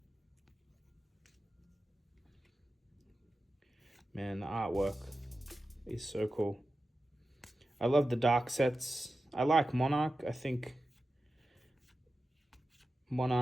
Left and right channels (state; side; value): normal; both; correlation 0.93